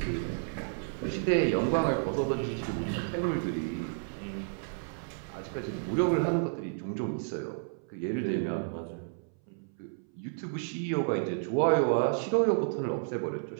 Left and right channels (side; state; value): left; silent; 57 dB below the other